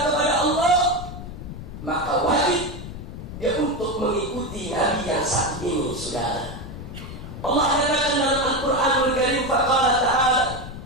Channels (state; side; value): noise; left; rumble, 10 dB below the sound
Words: kepada Allah, maka wajib dia untuk mengikuti nabi yang satu ini, saudara. Allah katakan dalam Al-Quranul Karim, faqala ta'ala